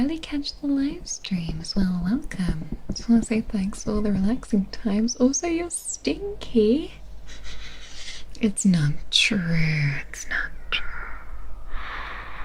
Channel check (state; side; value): identical; both; correlation 1.00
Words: catch the live streams. Well, welcome. Just want to say thanks for all the relaxing times. Also, you're stinky. It's not true. It's not true.